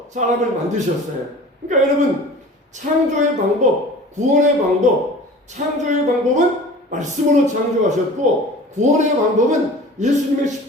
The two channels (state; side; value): normal; both; correlation 0.42